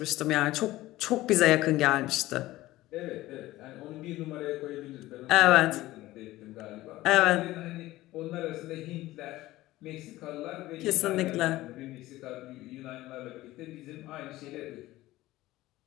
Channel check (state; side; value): quieter; right; 17.0 dB